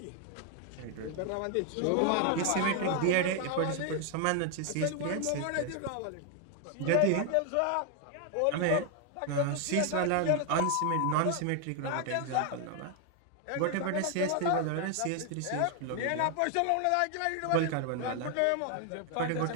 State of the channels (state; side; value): different; both; correlation 0.00